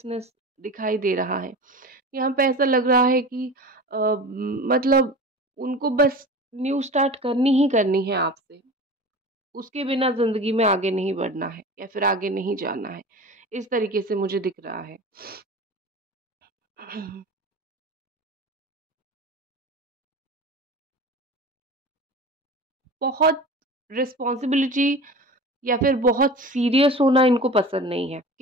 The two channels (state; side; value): normal; both; correlation 0.34